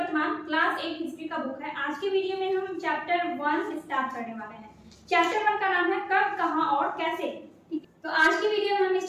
क्लास 8 हिस्ट्री का बुक है। आज के वीडियो में हम चैप्टर 1 स्टार्ट करने वाले हैं। चैप्टर 1 का नाम है कब, कहां और कैसे। तो आज की वीडियो में हम इस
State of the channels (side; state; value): both; identical; correlation 1.00